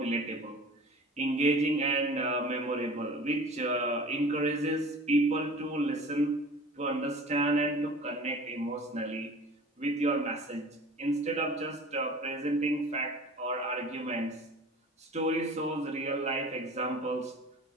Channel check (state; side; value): normal; both; correlation 0.42